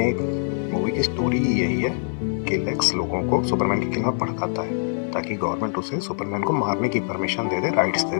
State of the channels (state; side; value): silent; right; 63 dB below the other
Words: मूवी की स्टोरी यही है कि लेक्स लोगों को सुपरमैन के खिलाफ भड़काता है ताकि गवर्नमेंट उसे सुपरमैन को मारने की परमिशन दे दे, राइट्स दे